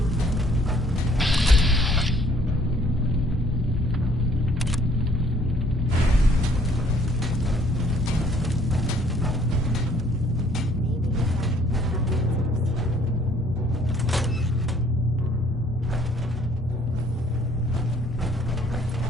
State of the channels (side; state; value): both; normal; correlation 0.61